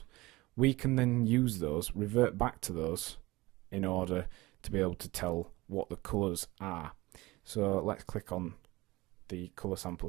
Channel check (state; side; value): quieter; left; 20.5 dB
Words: we can then use those, revert back to those in order to be able to tell what the colours are. So let's click on the colour sample